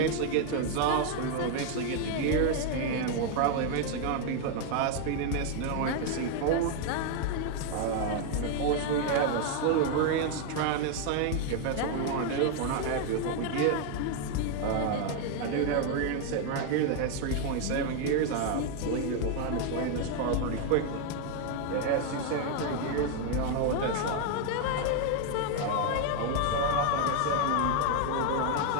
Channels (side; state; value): both; different; correlation 0.01